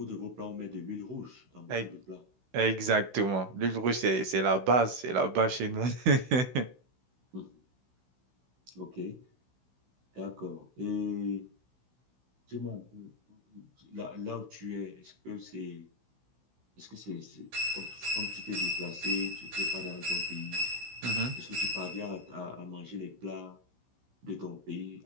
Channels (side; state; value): left; late; 16 ms